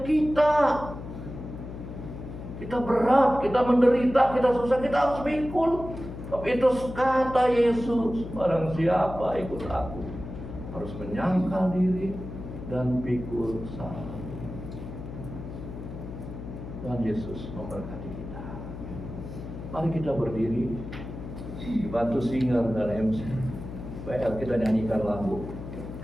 kita. Kita berat, kita menderita, kita susah, kita harus pikul. Tapi itu kata Yesus, barang siapa ikut aku harus menyangkal diri dan pikul salib. Tuhan Yesus memberkati kita. Mari kita berdiri, dibantu singer dan MC. Baik, kita nyanyikan lagu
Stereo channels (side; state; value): left; noise; hum, 10 dB below the sound